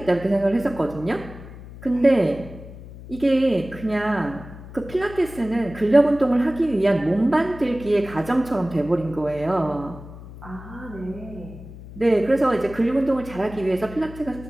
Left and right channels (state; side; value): noise; left; hum, 15 dB below the sound